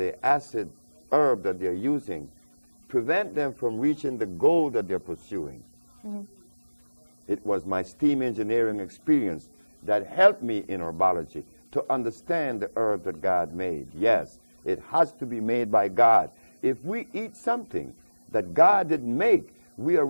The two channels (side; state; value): both; inverted; correlation -1.00